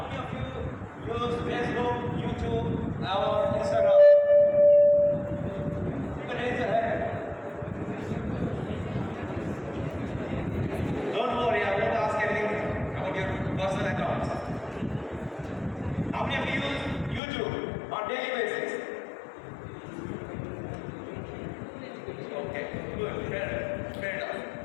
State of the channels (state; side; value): drops out; right; at 17.2 s